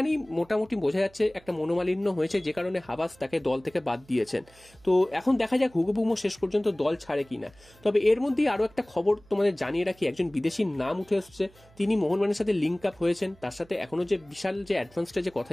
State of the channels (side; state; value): right; noise; hum, 27 dB below the sound